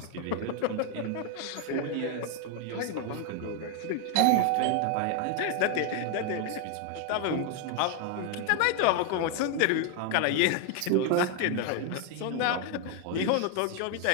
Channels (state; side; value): different; both; correlation 0.00